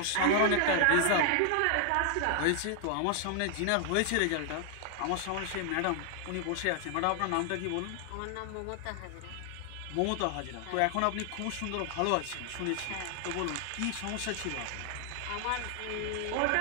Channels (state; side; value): different; both; correlation 0.00